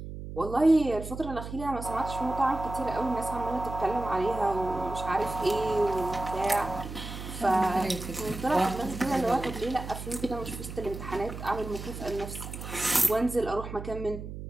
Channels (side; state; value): right; noise; hum, 9 dB below the sound